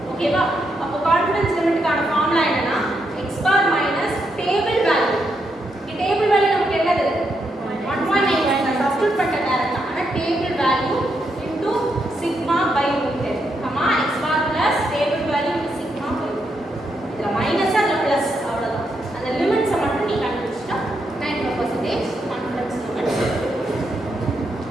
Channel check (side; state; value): both; normal; correlation 0.80